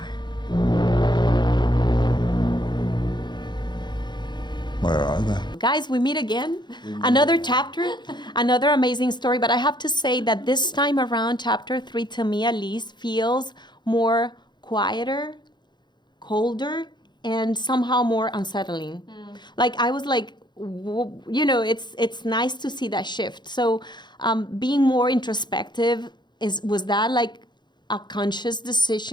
Where are they? Guys, we meet again. Another chapter, another amazing story. But I have to say that this time around, chapter 3, to me at least, feels more quieter, colder, and somehow more unsettling. Like I was like, you know, it's nice to see that shift. So being more introspective, was that like a conscious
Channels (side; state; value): right; late; 0.21 ms